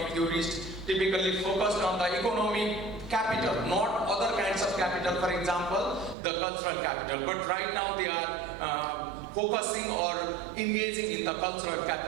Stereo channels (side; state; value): left; drops out; at 6.2 s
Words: theorists typically focused on the economic capital, not other kinds of capital, for example, the cultural capital. But right now they are focusing or engaging in the cultural